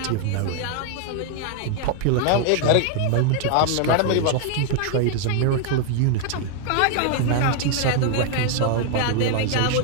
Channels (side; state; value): both; different; correlation 0.00